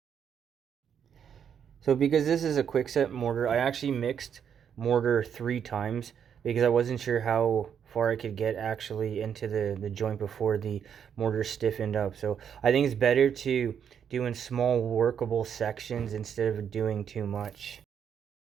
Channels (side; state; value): left; quieter; 8.0 dB